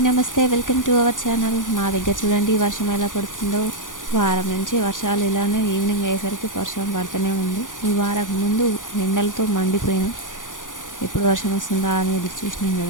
నమస్తే. Welcome to our channel. మా దగ్గర చూడండి వర్షం ఎలా పడుతుందో. వారం నుంచి వర్షాలు ఇలానే ఈవినింగ్ అయ్యేసరికి వర్షం పడుతూనే ఉంది. ఈ వారం ముందు ఎండలతో మండిపోయినాం. ఎప్పుడు వర్షం వస్తుందా అని ఎదురు చూసినాం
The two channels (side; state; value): right; late; 0.88 ms